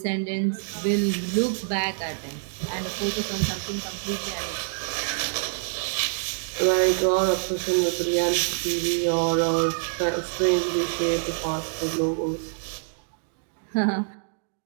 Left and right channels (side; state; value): left; silent; digital silence